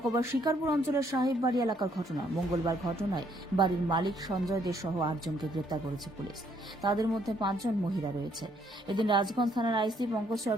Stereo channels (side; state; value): both; normal; correlation 0.68